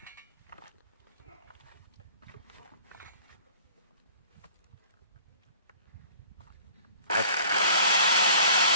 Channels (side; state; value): both; inverted; correlation -0.48